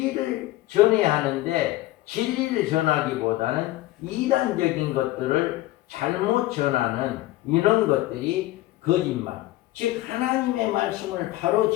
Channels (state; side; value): quieter; right; 16.8 dB